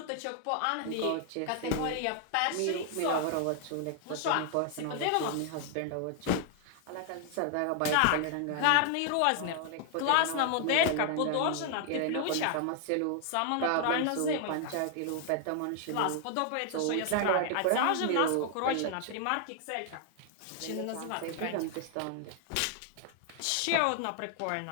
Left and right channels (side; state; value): both; different; correlation 0.00